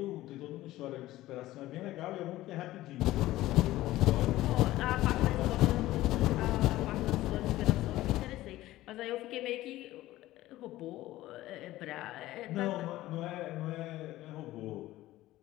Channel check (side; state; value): right; quieter; 16.1 dB